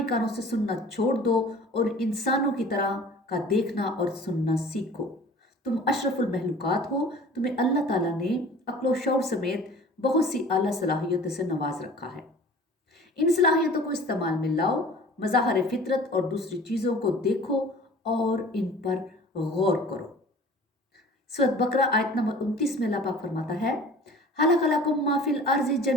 کانوں سے سننا چھوڑ دو، اور انسانوں کی طرح کا دیکھنا اور سننا سیکھو۔ تم اشرف المخلوقات ہو، تمہیں اللہ تعالیٰ نے عقل و شعور سمیت بہت سی اعلیٰ صلاحیتوں سے نواز رکھا ہے۔ ان صلاحیتوں کو استعمال میں لاؤ، مظاہر فطرت اور دوسری چیزوں کو دیکھو اور ان پر غور کرو۔ سورۃ بقرہ آیت نمبر 29 میں اللہ پاک فرماتا ہے، خلق لکم ما فی الارض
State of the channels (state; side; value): normal; both; correlation 0.45